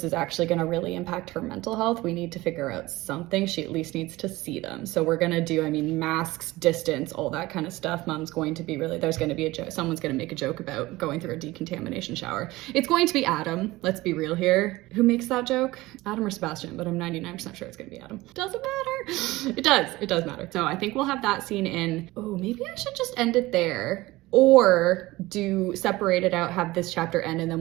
is actually gonna really impact her mental health. We need to figure out something. She at least needs to see them. So we're gonna do, I mean, masks, distance, all that kind of stuff. Mom's going to be there's going to be a joke. Someone's going to make a joke about going through a decontamination shower. It's going to be Adam. Let's be real here. Who makes that joke? Adam or Sebastian, but I'm 99% sure it's going to be Adam. Doesn't matter. It does matter. So I think we'll have that scene in. Oh, maybe I should just end it there. Or separate it out, have this chapter end, and then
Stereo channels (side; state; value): left; quieter; 19.3 dB